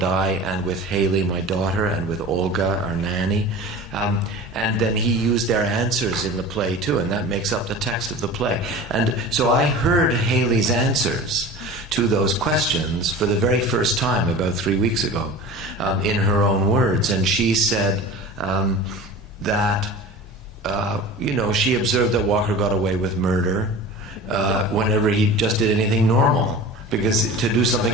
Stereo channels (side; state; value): both; normal; correlation 0.36